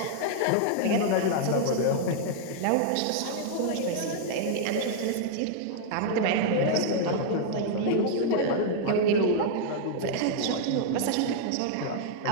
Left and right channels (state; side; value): different; both; correlation -0.01